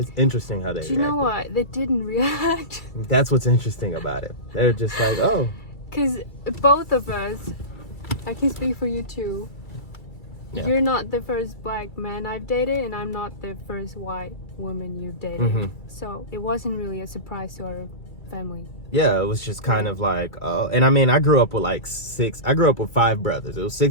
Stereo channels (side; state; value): right; late; 2.3 ms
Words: interesting how they reacted. Do you know what? They didn't react. That's what's interesting about it. They're just like, oh. Because both of us, I can speak for you too. Yeah. You're not the first black man I've dated, and I'm not the first white woman you've dated. Mm-hmm. So it wasn't really a surprise to our family. Yeah, it was just kind of like, and I mean, I grew up with I grew up with 5 brothers. It was